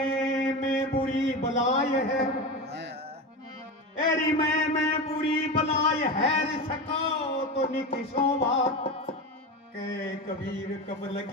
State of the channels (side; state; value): both; normal; correlation 0.23